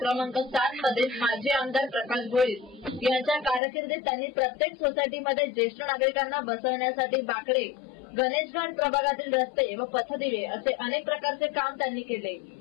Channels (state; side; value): drops out; right; at 3.6 s